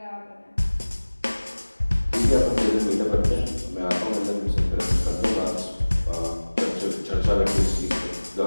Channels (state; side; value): inverted; both; correlation -1.00